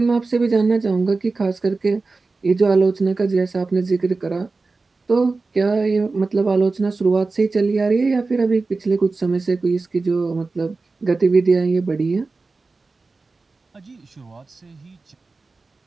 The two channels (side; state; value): left; quieter; 3.8 dB